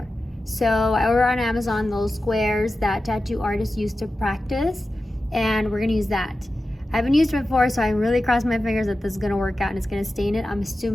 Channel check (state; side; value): normal; both; correlation 0.93